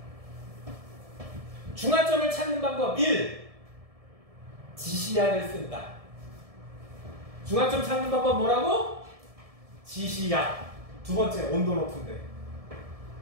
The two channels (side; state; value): left; late; 1.7 ms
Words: 중화점을 찾는 방법 1. 지시약을 쓴다. 중화점 찾는 방법 뭐라고? 지시약. 두 번째, 온도 높은데.